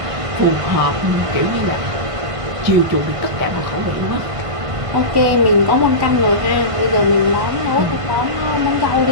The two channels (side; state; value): left; late; 1.5 ms